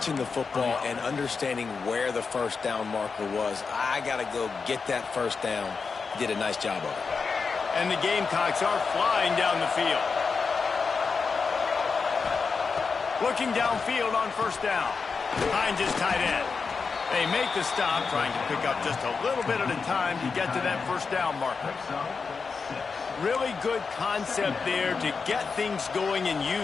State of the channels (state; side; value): quieter; right; 5.0 dB